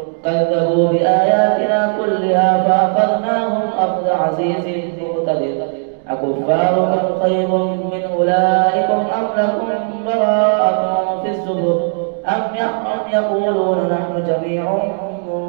كذبوا بآياتنا كلها فأخذناهم أخذ عزيز مقتدر أكفاركم خير من أولئكم أم لكم براءة في الزبر أم يقولون نحن جميع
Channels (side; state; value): left; silent; 66 dB below the other